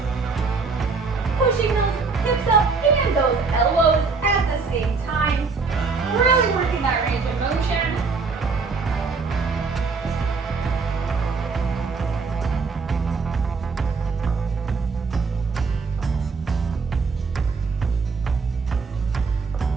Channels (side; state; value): left; quieter; 4.6 dB